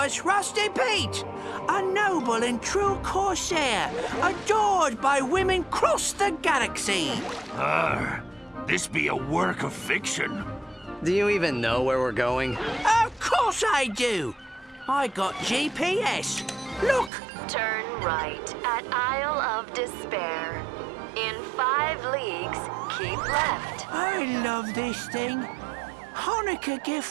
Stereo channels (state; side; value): drops out; left; at 17.1 s